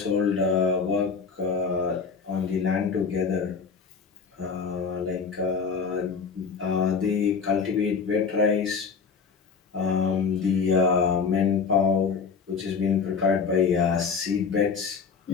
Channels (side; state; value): right; quieter; 5.6 dB